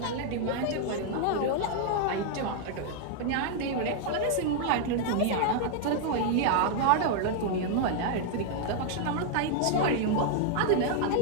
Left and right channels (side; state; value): both; different; correlation -0.01